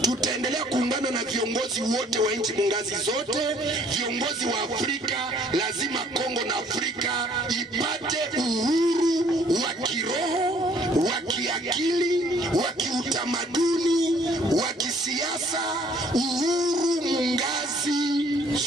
Tutaendelea kuungana na viongozi wote wa nchi mungazi zote, viongozi wa Afrika. Lazima Kongo na Afrika ipate uhuru wa kiroho, wa kiakili, wa kiutamaduni, wa kisiasa, uhuru mungazi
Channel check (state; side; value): normal; both; correlation 0.60